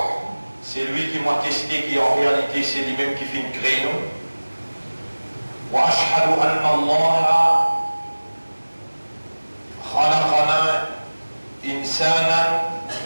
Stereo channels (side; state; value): both; inverted; correlation -1.00